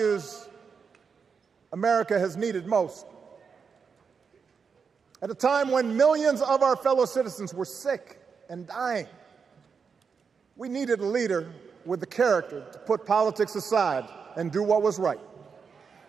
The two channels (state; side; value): quieter; left; 5.8 dB